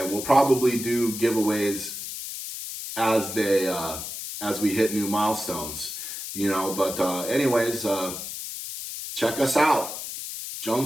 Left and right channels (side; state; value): left; noise; hiss, 7 dB below the sound